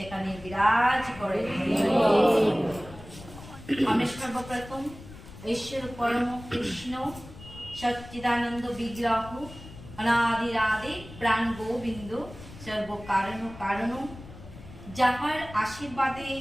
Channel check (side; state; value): left; noise; rumble, 16 dB below the sound